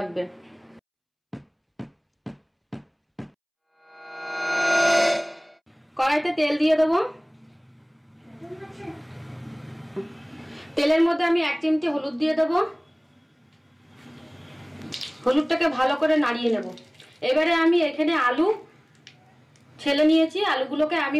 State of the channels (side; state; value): both; identical; correlation 1.00